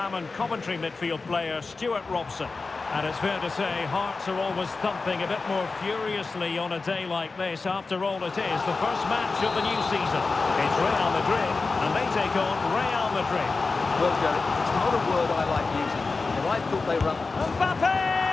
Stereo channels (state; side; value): quieter; right; 4.0 dB